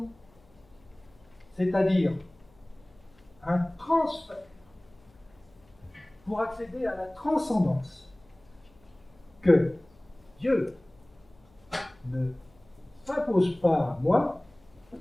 C'est-à-dire un transfert pour accéder à la transcendance que Dieu ne s'impose pas à moi,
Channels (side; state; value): left; noise; hum, 30 dB below the sound